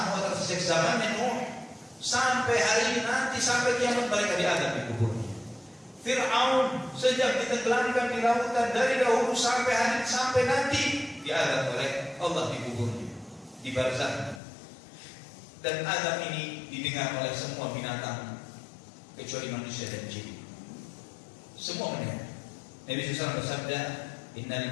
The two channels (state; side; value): drops out; right; at 14.4 s